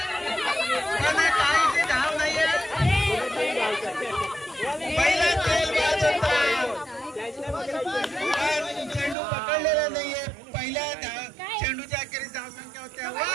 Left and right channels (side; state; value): left; drops out; at 9.2 s